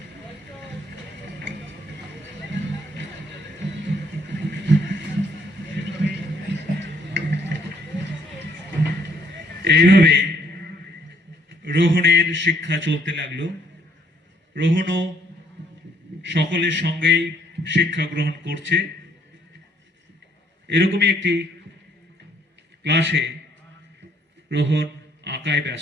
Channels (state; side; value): normal; both; correlation 0.66